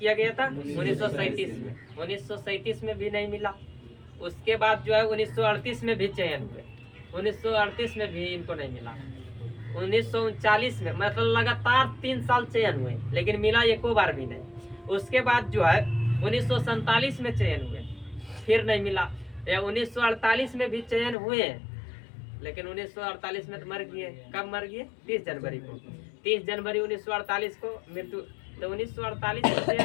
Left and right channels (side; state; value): right; drops out; at 21.2 s